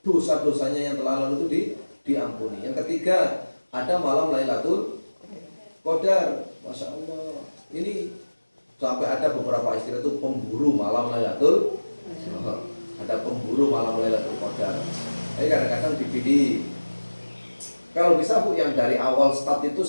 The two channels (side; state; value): both; inverted; correlation -1.00